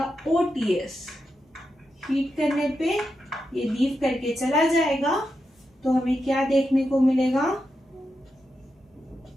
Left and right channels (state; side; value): normal; both; correlation 0.87